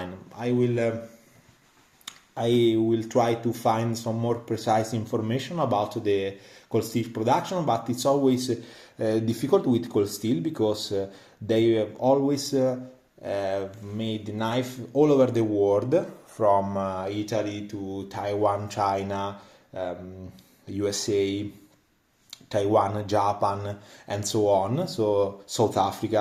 I will try to find some more precise information about the cold steel production, but it's always difficult with cold steel because they have always made knife all over the world, from Italy to Taiwan, China, USA, Taiwan, Japan, and so on, so South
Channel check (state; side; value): identical; both; correlation 1.00